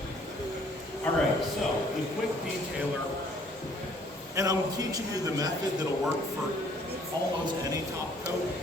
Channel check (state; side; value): normal; both; correlation 0.60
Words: All right, so the quick detailer, and I'm teaching you the method that'll work for almost any top coat,